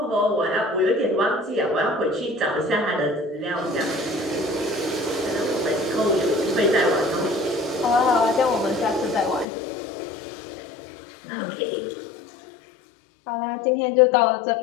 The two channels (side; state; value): right; drops out; at 9.5 s